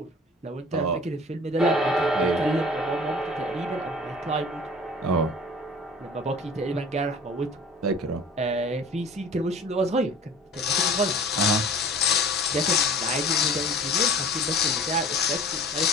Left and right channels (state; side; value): normal; both; correlation 0.44